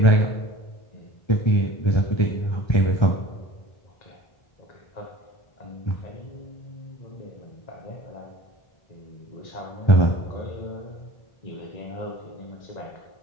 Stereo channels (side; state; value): right; late; 1.3 ms